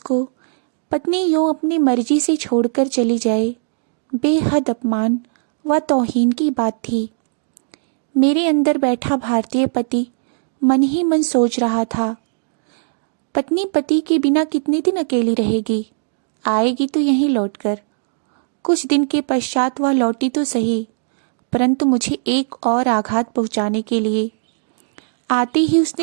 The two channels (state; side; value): silent; left; digital silence